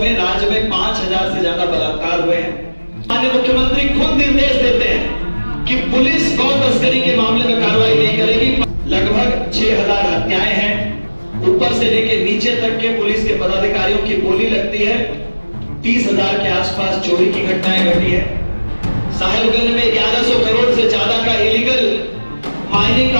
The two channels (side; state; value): both; inverted; correlation -1.00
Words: राज्य में 5000 से ज्यादा बलात्कार हुए हैं। माननीय मुख्यमंत्री खुद निर्देश देते हैं कि पुलिस गौ तस्करी के मामले में कार्रवाई नहीं करेगी। लगभग 6000 हत्याएं हैं। ऊपर से लेकर नीचे तक के पुलिस के पदाधिकारियों की बोली लगती है। 30,000 के आसपास चोरी की घटनाएं घटी है। साहेबगंज में 1100 करोड़ से ज्यादा का इलीगल माइनिंग